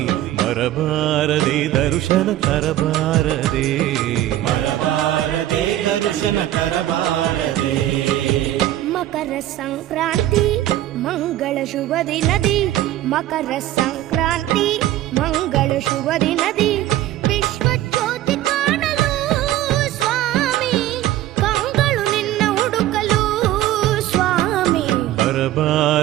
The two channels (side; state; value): left; quieter; 13.8 dB